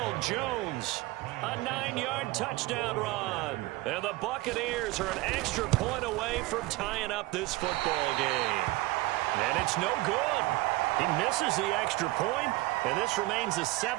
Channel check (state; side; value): quieter; left; 19.8 dB